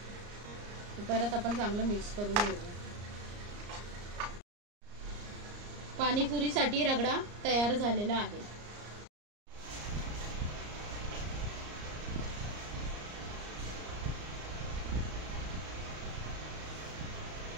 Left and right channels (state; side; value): late; left; 34 ms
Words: परत आपण चांगलं मिक्स करून घेऊया। पाणीपुरीसाठी रगडा तयार झालेला आहे।